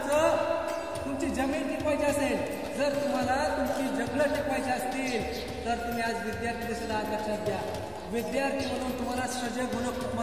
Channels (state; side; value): identical; both; correlation 1.00